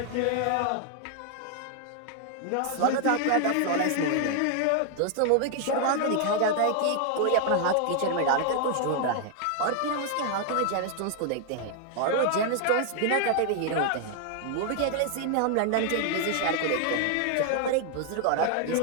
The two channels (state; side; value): different; both; correlation 0.00